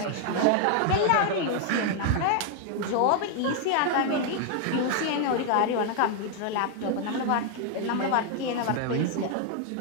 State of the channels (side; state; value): both; different; correlation 0.00